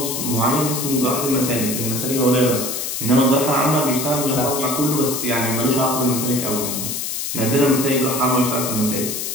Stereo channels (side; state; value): left; noise; hiss, 3 dB below the sound